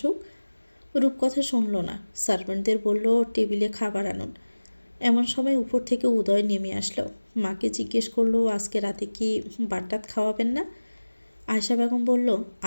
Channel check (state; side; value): inverted; both; correlation -1.00